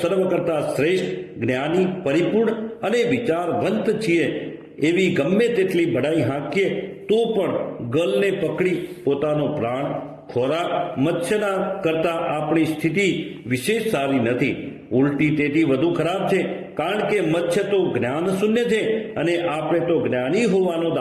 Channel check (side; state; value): both; identical; correlation 1.00